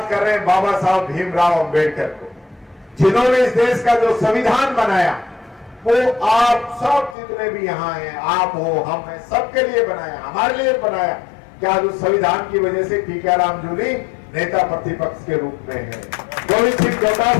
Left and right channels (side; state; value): right; drops out; at 7.2 s